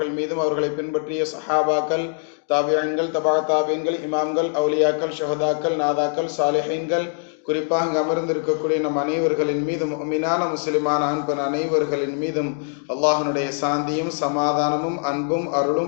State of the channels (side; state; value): right; silent; 64 dB below the other